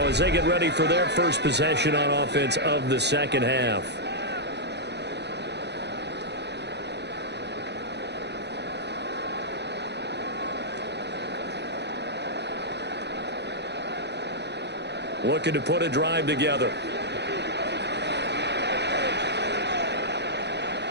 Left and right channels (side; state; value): left; late; 0.50 ms